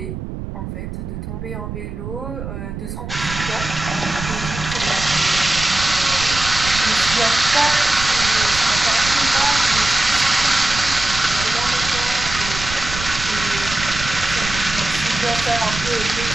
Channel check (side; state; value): right; noise; rumble, 8 dB below the sound